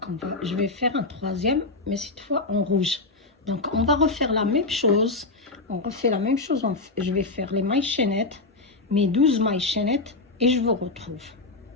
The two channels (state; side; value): quieter; right; 3.4 dB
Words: je vais faire un troisième, mais cette fois en rouge. Donc on va refaire la même chose. On refait la même chose. Je vais faire les mailles chaînettes, mes 12 mailles chaînettes, et je vous retrouve.